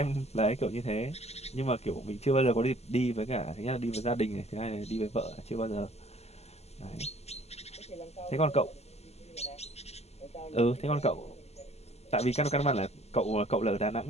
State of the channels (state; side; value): late; right; 0.30 ms